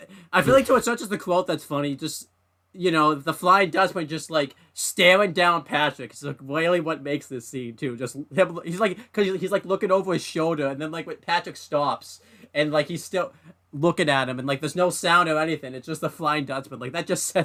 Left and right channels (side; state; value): both; identical; correlation 1.00